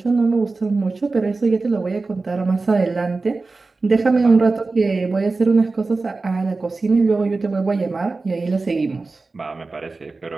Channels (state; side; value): quieter; left; 3.7 dB